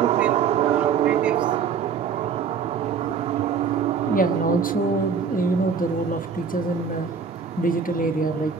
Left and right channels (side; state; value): left; quieter; 6.1 dB